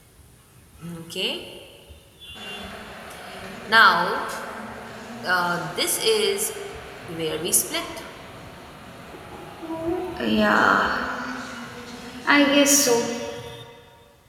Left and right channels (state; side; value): identical; both; correlation 1.00